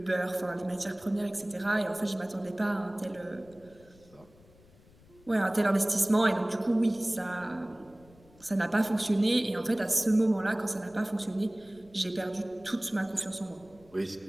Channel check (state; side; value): noise; left; rumble, 27 dB below the sound